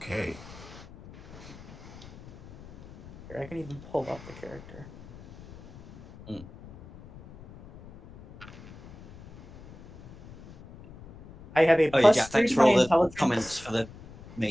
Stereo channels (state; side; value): noise; left; rumble, 19 dB below the sound